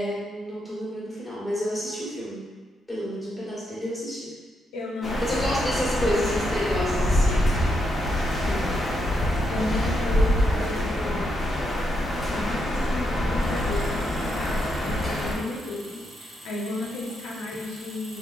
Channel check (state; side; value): normal; both; correlation 0.81